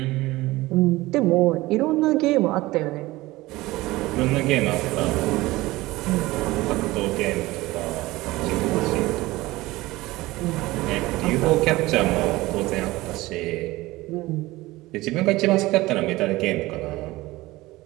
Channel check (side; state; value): left; quieter; 19.2 dB